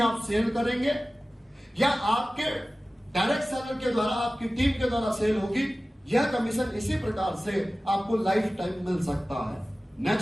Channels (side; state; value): both; normal; correlation 0.97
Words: आप सेल करेंगे या आपके डायरेक्ट सेलर के द्वारा आपकी टीम के द्वारा सेल होगी, यह कमीशन इसी प्रकार से आपको लाइफ टाइम मिल सकता है।